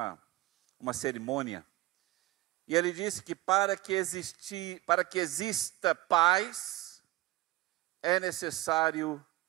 cerimônia. E ele disse que para que exista paz, é necessário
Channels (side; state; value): left; quieter; 18.5 dB